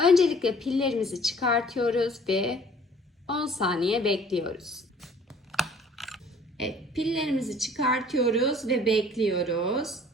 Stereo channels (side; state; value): both; normal; correlation 0.53